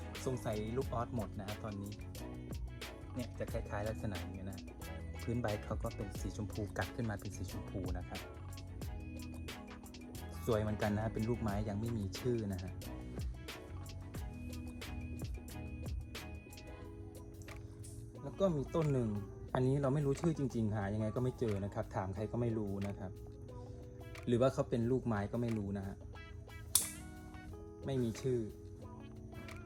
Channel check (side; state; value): both; identical; correlation 1.00